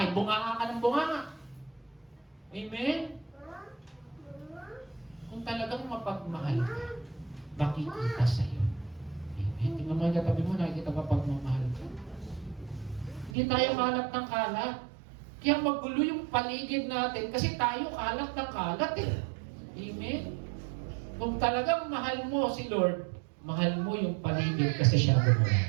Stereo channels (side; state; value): left; drops out; at 13.4 s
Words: bunganga ka ng bunganga. Amen? Kung talagang mapagmahal ka, makikita sa'yo. Amen? Tingnan mo yung katabi mo, nakikita pa pagmamahal ka. Hindi tayo kalat ng kalat. Kaya magulo yung paligid natin kasi tayo kalat ng kalat eh. Amen? Kung talagang mahal mo si Lord, mahal mo yung paligid kasi siya gumawa